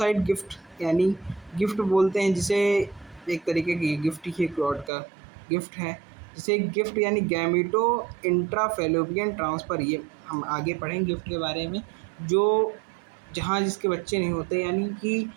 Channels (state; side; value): drops out; left; at 4.9 s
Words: गिफ्ट, यानी गिफ्ट बोलते हैं जिसे, एक तरीके की गिफ्ट ही गॉड का गिफ्ट है, जिसे गिफ्ट यानी गैमिटो इंट्राफेलोपियन ट्रांसफ़र। ये हम आगे पढ़ेंगे गिफ्ट के बारे में, जो जहाँ जिसके बच्चे नहीं होते, यानी कि